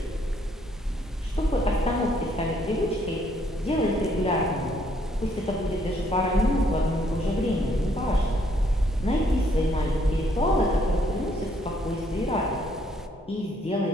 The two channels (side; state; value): both; normal; correlation 0.68